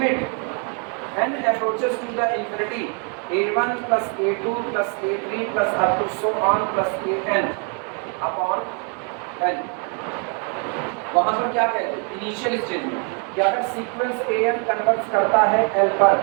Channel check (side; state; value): left; quieter; 39.2 dB